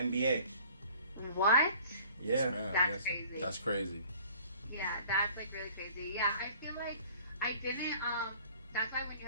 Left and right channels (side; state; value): both; inverted; correlation -0.51